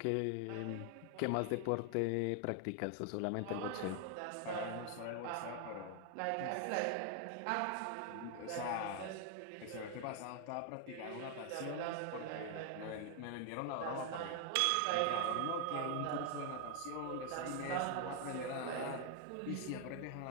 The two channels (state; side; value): different; both; correlation 0.00